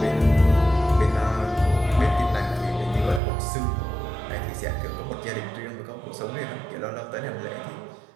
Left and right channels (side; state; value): left; drops out; at 3.2 s